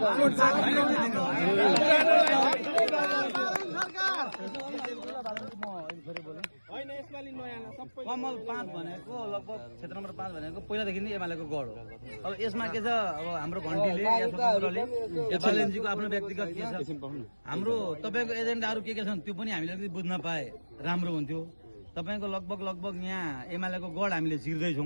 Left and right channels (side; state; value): both; inverted; correlation -1.00